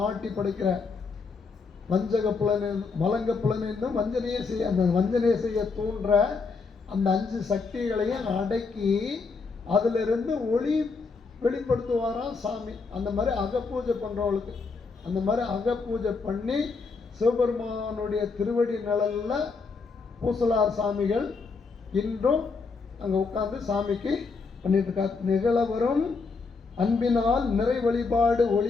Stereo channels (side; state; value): right; quieter; 4.6 dB